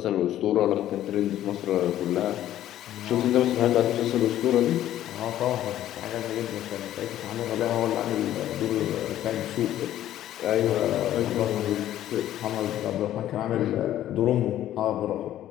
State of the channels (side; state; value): right; quieter; 12.6 dB